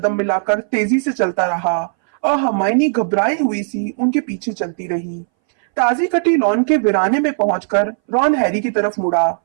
मिलाकर तेजी से चलता रहा और हरमाइनी घबराई हुई सी उनके पीछे चलती रही। ताजी कटी लॉन के वीराने में पहुंचकर रॉन हैरी की तरफ मुड़ा।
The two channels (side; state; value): left; silent; 63 dB below the other